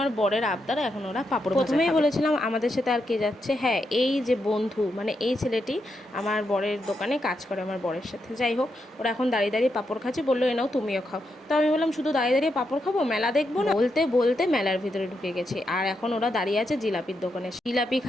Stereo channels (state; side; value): normal; both; correlation 0.83